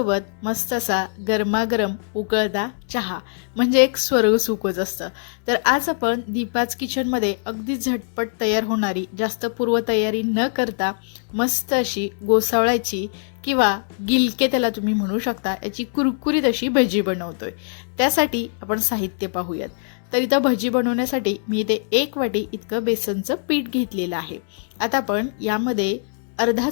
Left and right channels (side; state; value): right; silent; digital silence